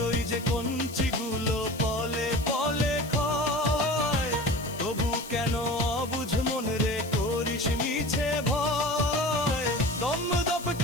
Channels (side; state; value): left; noise; hiss, 17 dB below the sound